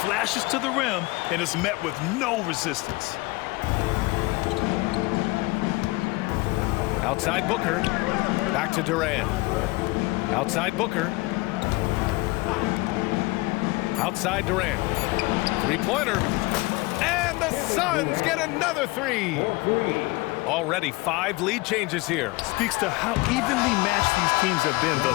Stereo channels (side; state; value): right; quieter; 22.9 dB